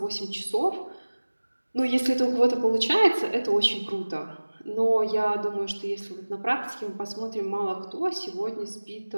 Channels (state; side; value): inverted; both; correlation -1.00